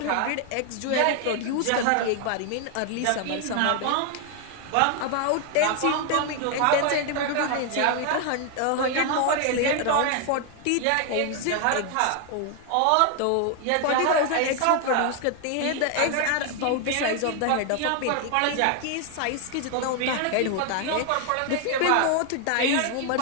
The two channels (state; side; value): different; both; correlation 0.00